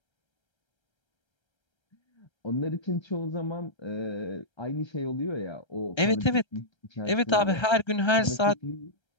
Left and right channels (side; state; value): right; late; 1.3 ms